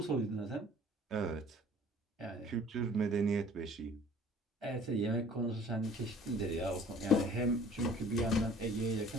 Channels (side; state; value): both; normal; correlation 0.51